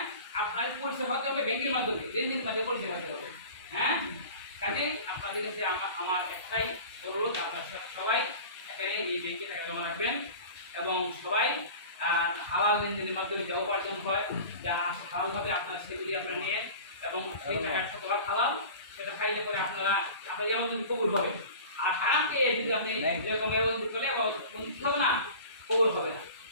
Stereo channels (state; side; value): inverted; both; correlation -0.38